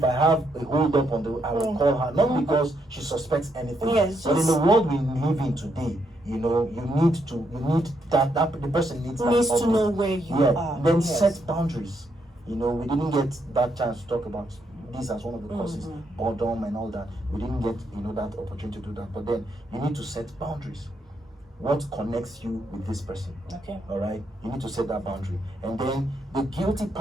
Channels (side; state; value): both; normal; correlation 0.77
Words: I have a hold up I will call her, not because she suspects anything. Yes, but in just- the world we live in today, you need that the person needs that Needs to update. know where you are. Then Yes. set boundaries. We didn't get that chance to talk about this as one of the causes, boredom and all that. We didn't get that opportunity to do that. But then you need to set boundaries. What connects you with this person? Okay. All right, you need to set that boundary, and then the guilty